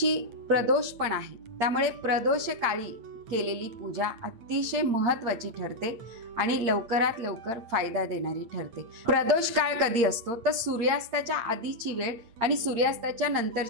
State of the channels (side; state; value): left; late; 8.7 ms